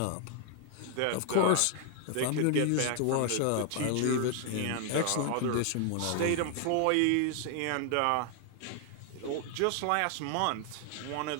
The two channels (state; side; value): different; both; correlation 0.00